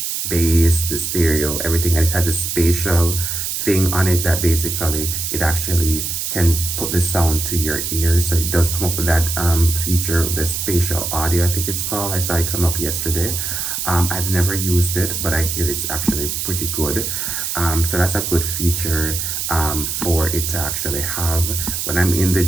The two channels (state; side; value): noise; right; hiss, 2 dB below the sound